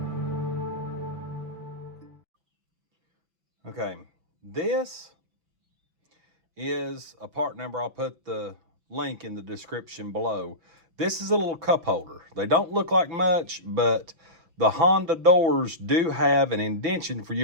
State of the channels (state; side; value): late; left; 6.0 ms